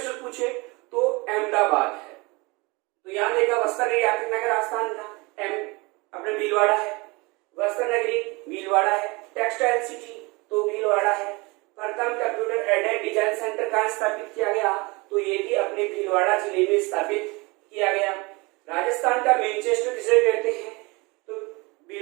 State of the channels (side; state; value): left; quieter; 25.8 dB